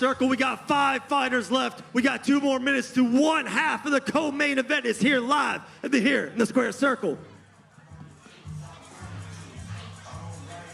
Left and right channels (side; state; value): both; identical; correlation 1.00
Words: We got 5 fighters left. We got 2 more minutes to one half of the co-main event is here live here in the square circle.